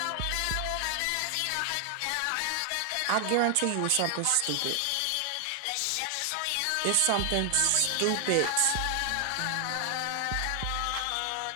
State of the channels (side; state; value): both; different; correlation 0.00